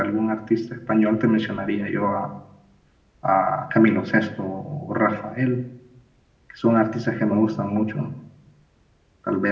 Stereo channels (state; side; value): identical; both; correlation 1.00